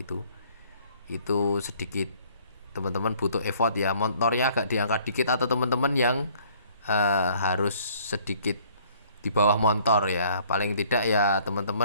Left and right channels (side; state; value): both; inverted; correlation -0.59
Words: sedikit teman-teman butuh effort ya, motornya agak diangkat dikit, atau teman-teman yang harus sedikit di bawah motor ya, paling tidak ya